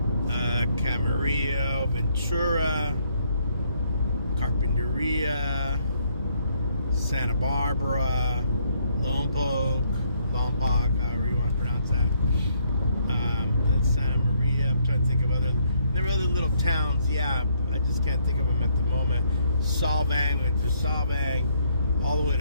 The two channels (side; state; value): both; inverted; correlation -0.70